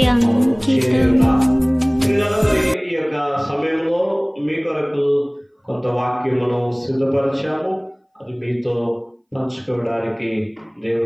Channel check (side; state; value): both; identical; correlation 1.00